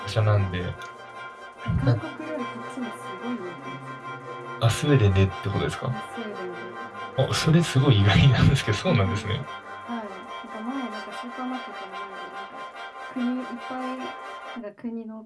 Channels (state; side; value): identical; both; correlation 1.00